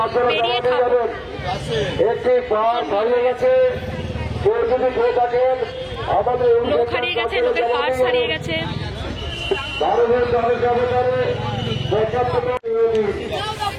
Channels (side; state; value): both; identical; correlation 1.00